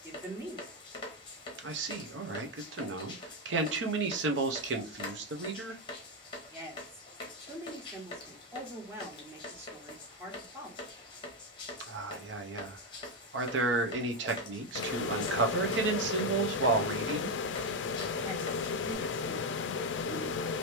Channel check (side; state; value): both; normal; correlation 0.06